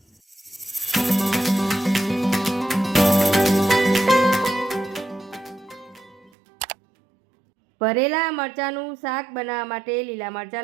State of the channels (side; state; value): left; drops out; at 6.3 s